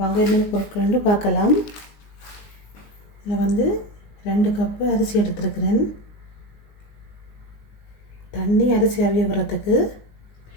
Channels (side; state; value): right; late; 19 ms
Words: வாங்க என்னென்ன பொருட்கள்னு பார்க்கலாம். இதில் வந்து 2 கப்பு அரிசி எடுத்துருக்கிறேன். தண்ணி அரிசி அவிய வரத்துக்கு